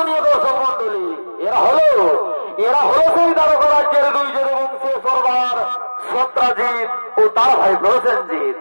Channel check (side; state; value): both; inverted; correlation -1.00